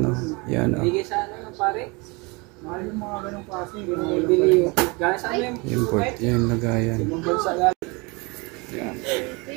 yan o. Yung board, yung lagayan. Yan.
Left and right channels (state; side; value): quieter; left; 27.8 dB